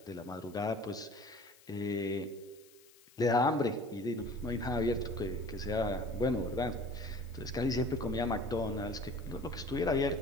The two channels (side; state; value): left; noise; hiss, 26 dB below the sound